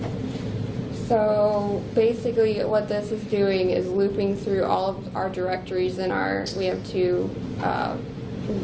So basically what this is doing is looping through all of our directories we have 2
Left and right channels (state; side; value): identical; both; correlation 1.00